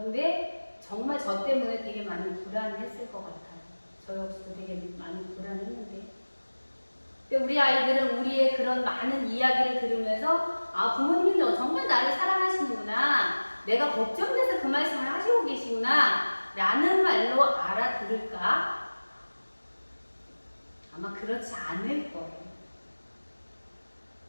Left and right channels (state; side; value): inverted; both; correlation -1.00